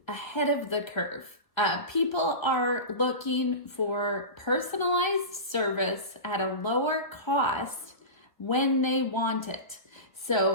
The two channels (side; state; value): right; late; 1.3 ms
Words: ahead of the curve. People are looking for personalized service at a lower cost when they want it.